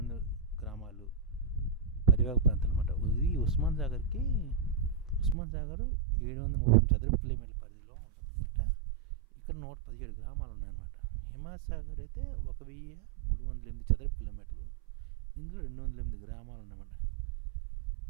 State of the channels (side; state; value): left; drops out; at 5.4 s